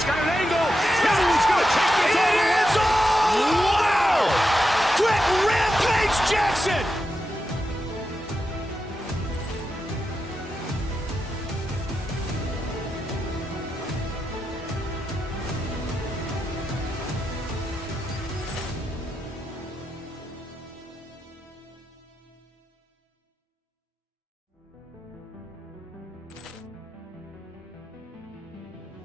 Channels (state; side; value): normal; both; correlation 0.88